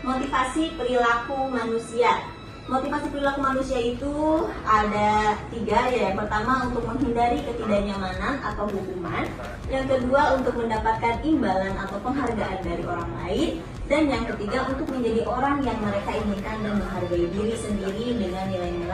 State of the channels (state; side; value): identical; both; correlation 1.00